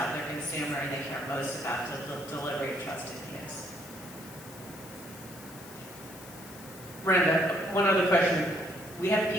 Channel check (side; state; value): left; noise; hiss, 17 dB below the sound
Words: their consumer and they care most about the delivery of trusted news. Randa, one other question. We have